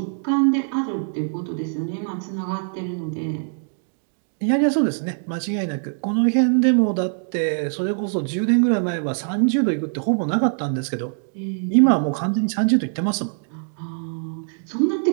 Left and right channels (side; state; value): left; silent; digital silence